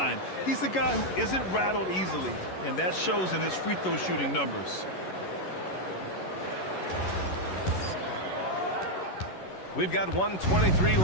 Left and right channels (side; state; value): right; late; 11 ms